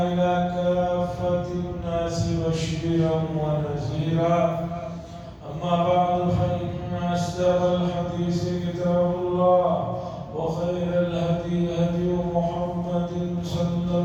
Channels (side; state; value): both; identical; correlation 1.00